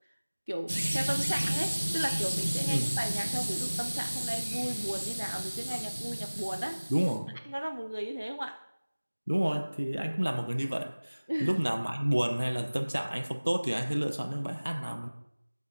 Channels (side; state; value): both; inverted; correlation -1.00